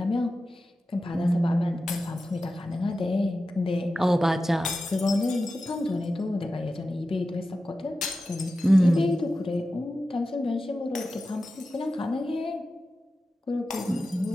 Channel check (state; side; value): normal; both; correlation 0.93